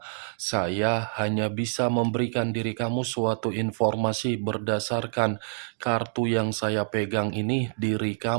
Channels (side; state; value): left; silent; digital silence